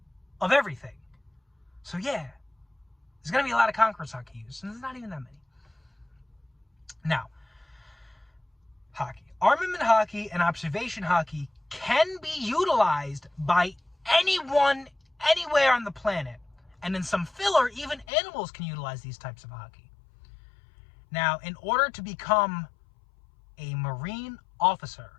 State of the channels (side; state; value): right; drops out; at 18.1 s